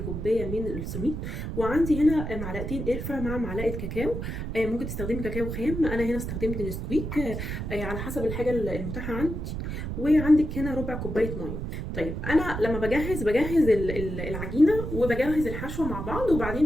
من السميد، وعندي هنا معلقتين قرفه مع معلقه كاكاو. ممكن تستخدمي كاكاو خام، انا هنا استخدمت نسكويك على حسب الحاجه المتاحه عندي. وعندك هنا ربع كوبايه ميه. طيب انا لما بجهز العجينه وبجهز الحشوه مع بعض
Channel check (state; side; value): noise; right; rumble, 5 dB below the sound